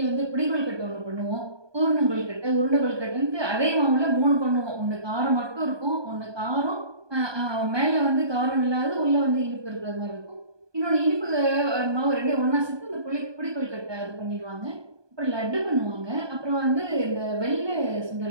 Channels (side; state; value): left; late; 1.2 ms